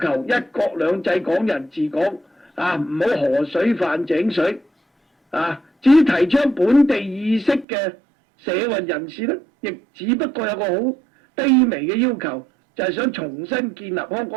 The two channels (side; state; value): left; drops out; at 7.7 s